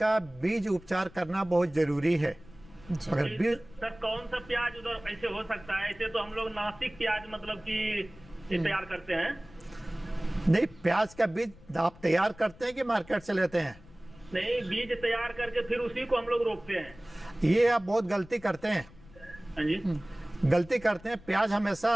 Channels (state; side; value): noise; left; rumble, 22 dB below the sound